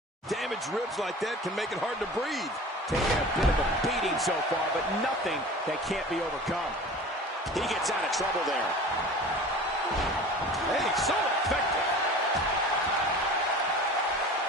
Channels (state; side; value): normal; both; correlation 0.39